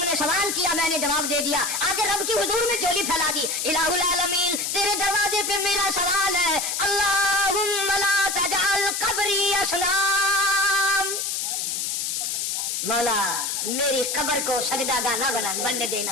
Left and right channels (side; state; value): left; noise; hiss, 1 dB below the sound